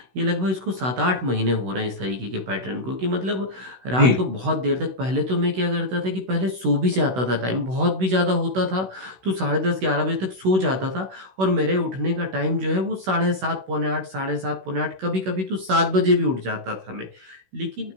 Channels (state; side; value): late; left; 16 ms